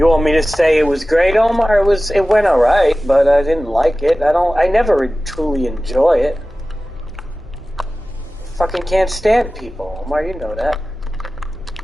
want me to say it was great, Omar? It went alright, but I didn't like it. I never truly enjoy it. Fucking can't stand people, Omar, you know that.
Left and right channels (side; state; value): both; normal; correlation 0.96